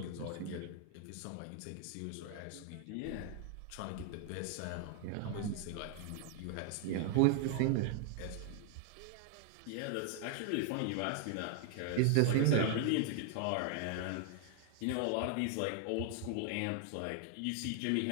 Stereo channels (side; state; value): both; different; correlation 0.00